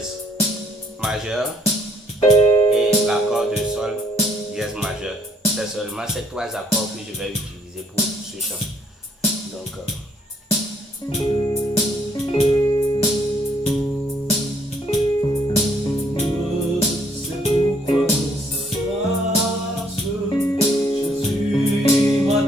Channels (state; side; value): normal; both; correlation 0.66